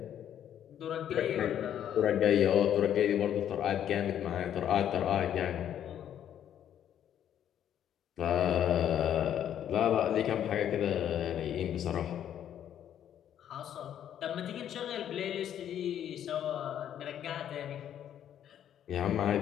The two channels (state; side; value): quieter; right; 10.1 dB